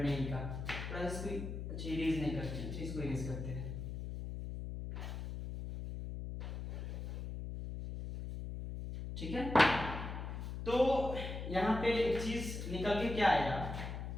का। थोड़ा इसको अच्छा इरेज नहीं करते हैं, इसको इरेज करते हैं। ठीक है, तो यहाँ पे एक चीज निकल के क्या आया,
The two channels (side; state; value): left; noise; hum, 6 dB below the sound